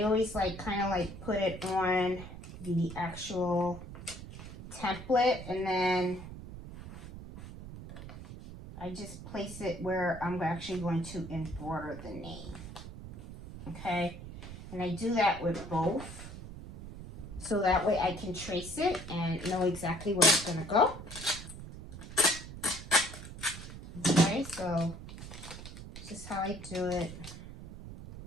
always like kind of like put it on the actual template, and then I just place it where I'm actually going to embroider the name. Okay, and I do that with both, so that way I can trace it and know exactly where it's gonna go. Okay, so this is how I do it.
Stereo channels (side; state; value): right; noise; rumble, 12 dB below the sound